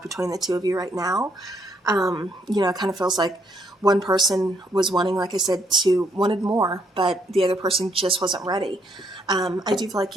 between the two of you right now. It kind of feels like one person was wanting, like I said, wanted more, but the other person just wasn't ready. I do feel like,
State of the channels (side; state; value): both; normal; correlation 0.71